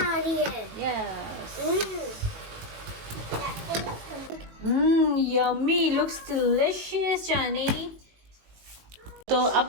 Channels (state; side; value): late; left; 19 ms